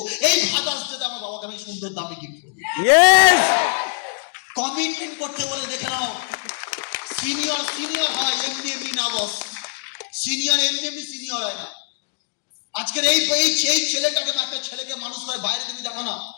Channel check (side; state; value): right; silent; digital silence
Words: এই ফাদার্স ডে তে আমার বাবাকে আমি সুন্দর দামে গিফট করবো। Yes. কমিটমেন্ট করতে বলে দেখে নাও, সিনিয়র হয় এমনি না বস, সিনিয়র এমনি সিনিয়র হয় না। আজকের এই ছেলেটাকে, একটা ছেলেকে মানুষ করে বাইরে তুমি দেখো না,